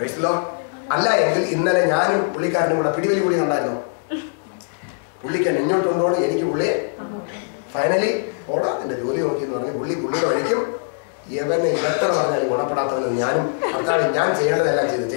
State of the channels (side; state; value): right; silent; digital silence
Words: അല്ല എങ്കിൽ ഇന്നലെ ഞാനും പുള്ളിക്കാരനും കൂടെ പിടിവലി കൂടി കണ്ടായിരുന്നു. പുള്ളിക്ക് ഇങ്ങോട്ട് കൊണ്ടോണം, എനിക്ക് പുള്ളിയെ ഫൈനലി ഓടാ എന്റെ ജോലി നോക്കി എന്ന് പറഞ്ഞ് പുള്ളിയുടെ വഴിക്കും ഇവനെ എത്ര പറഞ്ഞാലും ഗുണപ്പെടാത്തവന് ഞാനും ഭർത്താവ് ഞാൻ ചെയ്യേണ്ടതെല്ലാം